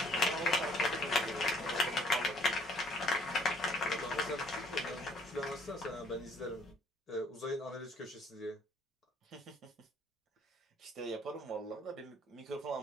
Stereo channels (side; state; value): both; normal; correlation 0.61